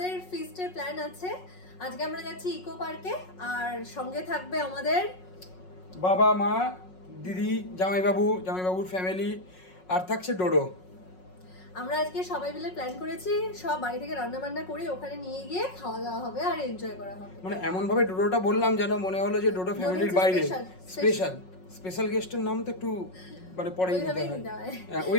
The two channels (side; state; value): right; late; 5.4 ms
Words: feast এর plan আছে। আজকে আমরা যাচ্ছি ইকো পার্কে আর সঙ্গে থাকবে আমাদের বাবা মা দিদি জামাইবাবুর ফ্যামিলি আর থাকছে ডোডো। আমরা আজকে সবাই মিলে প্ল্যান করেছি সব বাড়ি থেকে রান্না বান্না করে ওখানে নিয়ে গিয়ে খাওয়া দাওয়া হবে আর এনজয় করা হবে। মানে এমন ভাবে ডোডোটা বললাম যেন মনে হলো যে ডোডো ফ্যামিলির বাইরে স্পেশাল গেস্টের নাম তো একটু মানে পরেই নিতে হয়। হ্যাঁ,